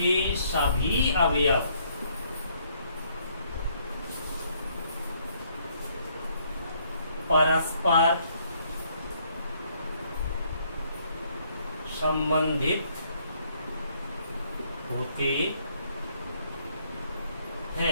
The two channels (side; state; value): both; inverted; correlation -0.68